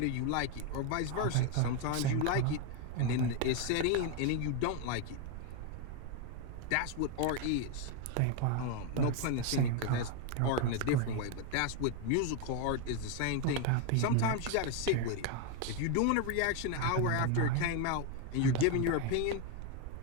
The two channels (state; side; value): different; both; correlation 0.02